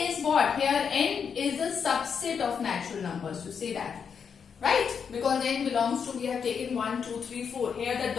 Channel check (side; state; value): right; quieter; 6.7 dB